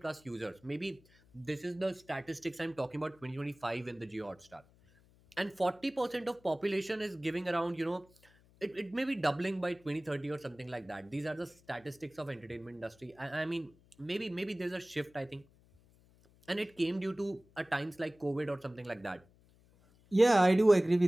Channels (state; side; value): noise; left; hum, 29 dB below the sound